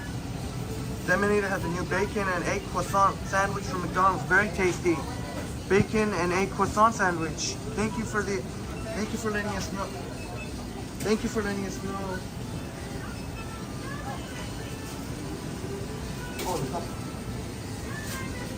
Deminator has a new bacon and egg croissant sandwich from McDonald's. Very tasty. Bacon and egg croissant sandwich. Thank you for letting us know. Thank you for letting us know.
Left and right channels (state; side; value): identical; both; correlation 1.00